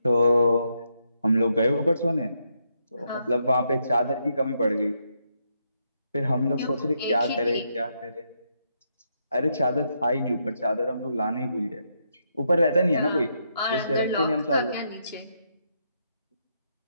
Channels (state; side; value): inverted; both; correlation -0.79